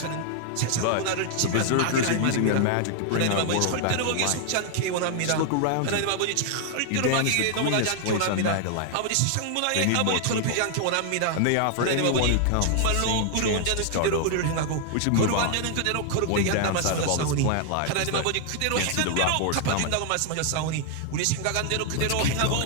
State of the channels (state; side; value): different; both; correlation 0.00